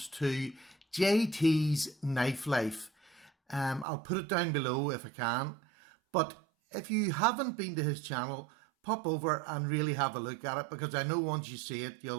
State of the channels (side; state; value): left; drops out; at 3.9 s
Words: to JTs Knife Life. I'll put it down below if I can, but if you haven't been to his channel, pop over and really have a look at it, because I know once you see it,